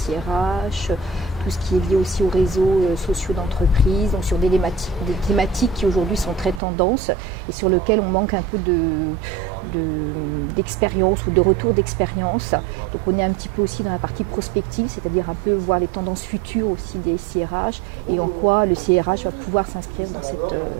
tout ce qui est lié aussi aux réseaux sociaux d'entreprise, donc sur des thématiques qui aujourd'hui sont très tendances et sur lesquelles on manque un peu d'expérience ou de retour d'expérience. Donc on est un petit peu aussi dans la partie prospective, c'est-à-dire un peu voir les tendances futures aussi des SIRH et en quoi le SIRH va pouvoir s'inscrire dans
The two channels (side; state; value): left; drops out; at 6.6 s